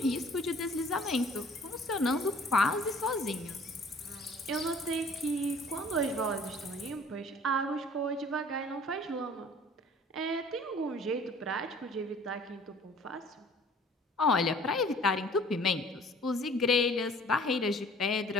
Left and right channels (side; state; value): both; normal; correlation 0.52